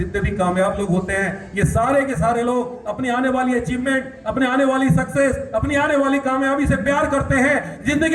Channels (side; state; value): both; identical; correlation 1.00